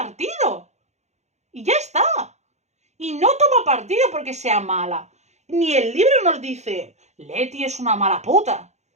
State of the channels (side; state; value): left; late; 0.33 ms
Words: Y ya está. Y no toma partido porque sea mala. Ni el libro nos dice, Leti es una mala puta.